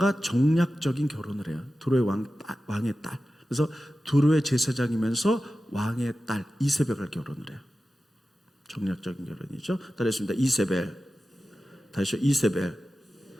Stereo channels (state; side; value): normal; both; correlation 0.94